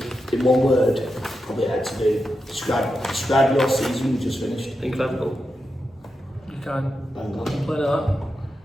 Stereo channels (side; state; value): both; normal; correlation 0.88